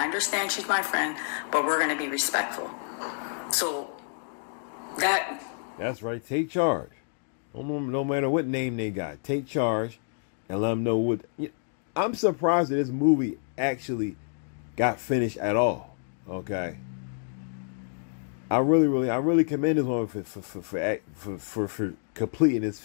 understand she's my friend, but we're going to be respectful." So that's right. Take charge. No matter what name they got, take charge and let them know what. I'm surprised that this movie actually got finished at all. Okay. I really commend this woman for completing this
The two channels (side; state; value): right; silent; 59 dB below the other